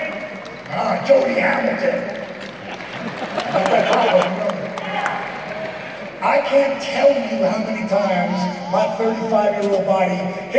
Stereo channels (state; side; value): identical; both; correlation 1.00